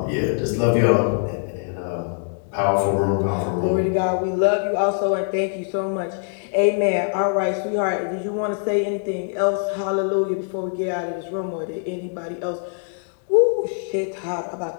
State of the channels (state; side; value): silent; right; 63 dB below the other